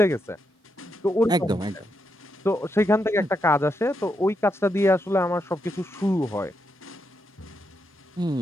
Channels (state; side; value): normal; both; correlation 0.82